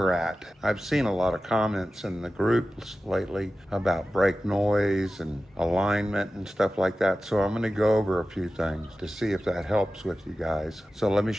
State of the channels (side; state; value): both; normal; correlation 0.94